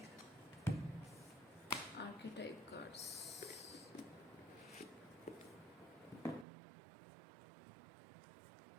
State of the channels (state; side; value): drops out; left; at 6.5 s